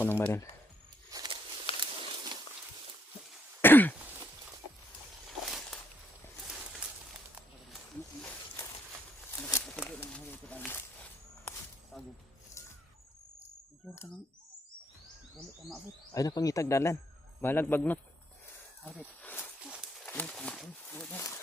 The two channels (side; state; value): both; normal; correlation 0.72